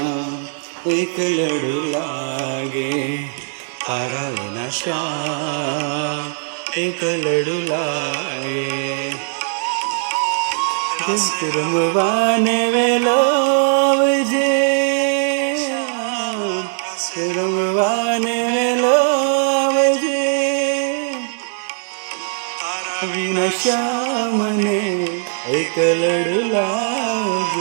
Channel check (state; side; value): silent; left; digital silence